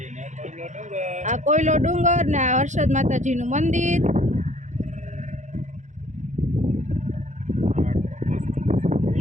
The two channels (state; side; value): late; left; 0.35 ms